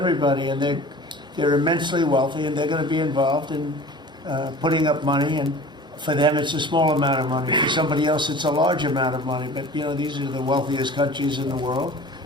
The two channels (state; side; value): normal; both; correlation 0.41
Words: and they're immensely wealthy, and they're going to be involved in putting up money, and for them it's a small amount of money. For somebody else it's a large amount of money, but you know, these are the wealthiest countries in the world,